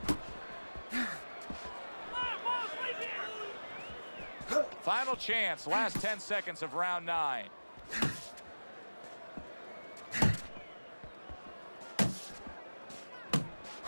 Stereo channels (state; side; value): inverted; both; correlation -1.00